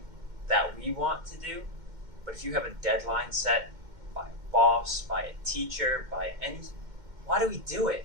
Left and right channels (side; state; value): left; late; 2.1 ms